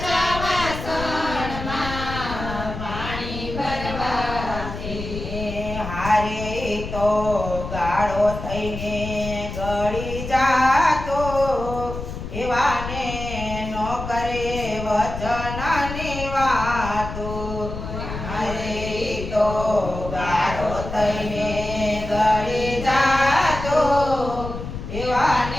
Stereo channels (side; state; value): left; noise; rumble, 8 dB below the sound